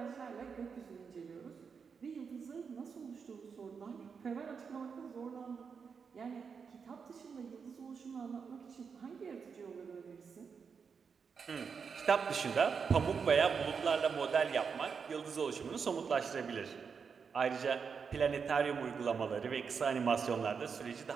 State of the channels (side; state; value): left; quieter; 6.0 dB